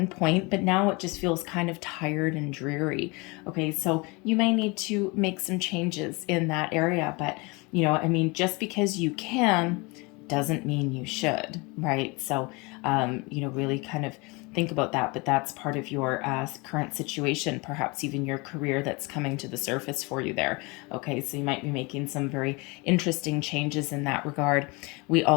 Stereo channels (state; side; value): quieter; right; 27.0 dB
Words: point, but now it just feels kind of tired and dreary. Okay, so you may need to make some changes in that area, but just because you can doesn't mean you should, right? So really kind of think about that, but that's part of your current situation, perhaps even your career that's coming to the surface for you there. Okay, so you might be making some very interesting changes in that regard. We